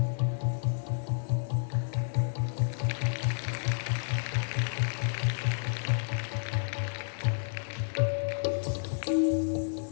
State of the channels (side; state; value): right; silent; digital silence